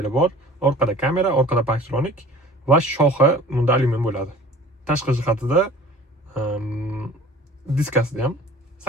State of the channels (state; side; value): normal; both; correlation 0.46